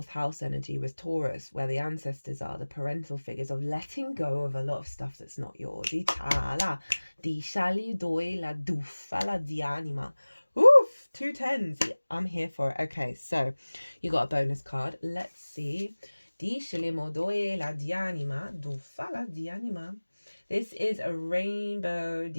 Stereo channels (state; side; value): inverted; both; correlation -1.00